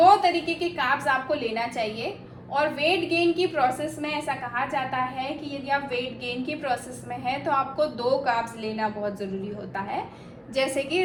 तरीके के कार्ब्स आपको लेना चाहिए। और वेट गेन की प्रोसेस में ऐसा कहा जाता है कि यदि आप वेट गेन की प्रोसेस में हैं तो आपको 2 कार्ब्स लेना बहुत ज़रूरी होता है, जैसे कि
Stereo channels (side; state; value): both; identical; correlation 1.00